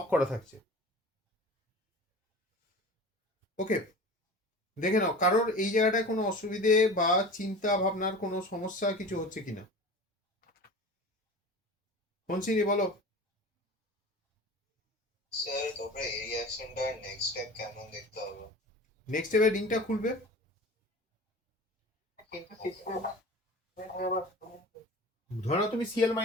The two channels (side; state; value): both; normal; correlation 0.36